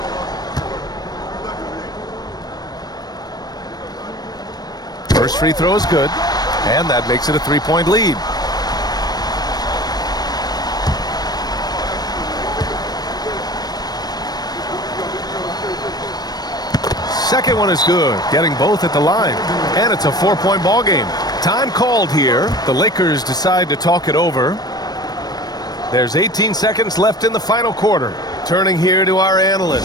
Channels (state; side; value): late; right; 0.19 ms